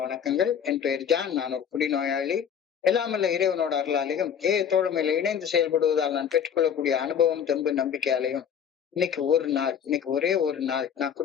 வணக்கங்கள். என் பெயர் ஜான். நான் ஒரு குடிநோயாளி. எல்லாமல்ல இறைவனோட அருளாலையும் தோழமையில இணைந்து செயல்படுவதால் நான் பெற்றுக்கொள்ளக்கூடிய அனுபவம், தெம்பு, நம்பிக்கையாலையும் இன்னைக்கு ஒரே ஒரு நாள் நான்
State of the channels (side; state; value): right; quieter; 8.0 dB